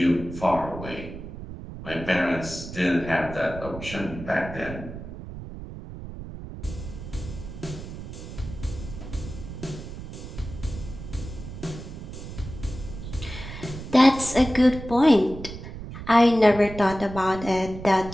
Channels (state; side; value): noise; right; rumble, 11 dB below the sound